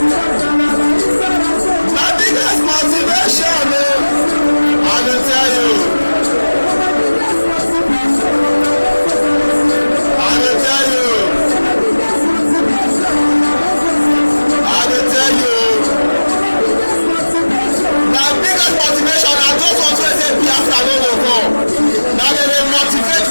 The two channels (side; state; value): both; inverted; correlation -1.00